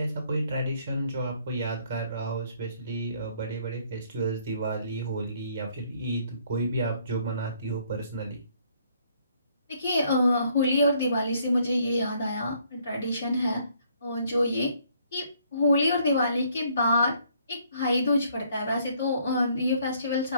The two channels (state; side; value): inverted; both; correlation -0.66